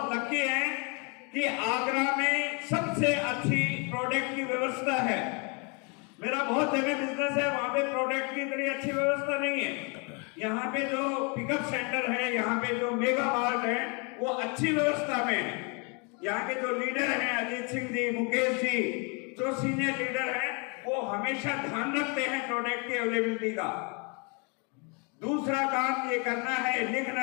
लकी हैं कि आगरा में सबसे अच्छी प्रोडक्ट की व्यवस्था है। मेरा बहुत जगह बिजनेस है, वहां पे प्रोडक्ट की इतनी अच्छी व्यवस्था नहीं है। यहाँ पे जो पिकअप सेंटर है, यहाँ पे जो मेगा मार्ट है, वो अच्छी व्यवस्था में है। यहाँ के जो लीडर हैं, अजीत सिंह जी, मुकेश जी, जो सीनियर लीडर हैं, वो हमेशा ध्यान रखते हैं प्रोडक्ट की अवेलेबिलिटी का। दूसरा काम ये करना है,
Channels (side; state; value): right; quieter; 33.7 dB